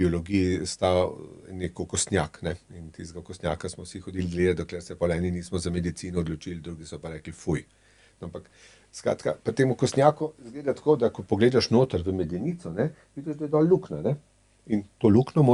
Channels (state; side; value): identical; both; correlation 1.00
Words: sta nek okostnjak, ne. In tistega okostnjaka smo vsi hodili gledat, dokler se pol eni nismo za medicino odločili, drugi so pa rekli fuj. Ampak skratka, pri tem okostnjaku izgleda tako, da ko pogledaš noter v medenico, ne, vidiš, da je dol luknja, ne. In to luknjo